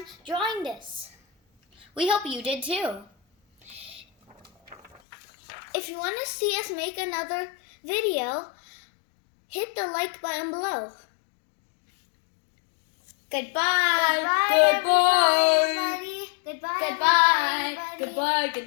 fun drawing this. We hope you did too. If you want to see us make another video, hit the like button below. Goodbye. Goodbye, everybody. Goodbye. Goodbye. everybody. Goodbye.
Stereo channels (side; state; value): right; drops out; at 5.0 s